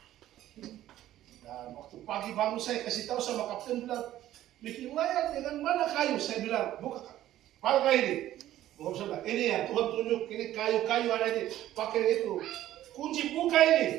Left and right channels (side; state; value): left; quieter; 13.4 dB